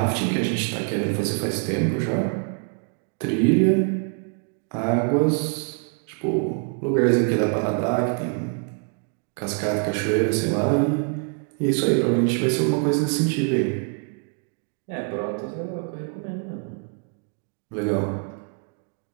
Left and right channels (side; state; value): left; quieter; 40.0 dB